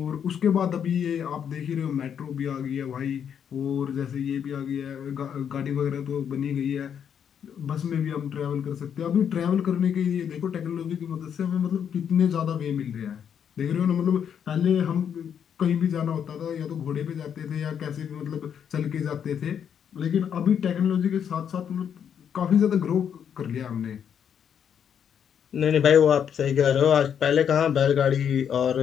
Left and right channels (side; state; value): right; quieter; 8.2 dB